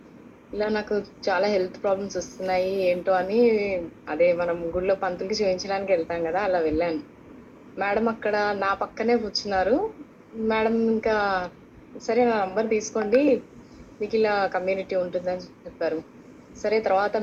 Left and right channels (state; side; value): identical; both; correlation 1.00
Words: ఇలా నాకు చాలా హెల్త్ ప్రాబ్లమ్స్ వస్తున్నాయి ఏంటో అని అదే మనం గుడిలో పంతులకి చూయించడానికి వెళ్తాం గదా! అలా వెళ్ళాను. మేడం అక్కడ నా పక్కనే కూర్చున్నారు. మేడం ఇంకా సరే నా నంబర్ తీసుకోండి. మీకిలా కమ్యూనిటీ ఉంటుందని చెప్పారు. సరే తర్వాత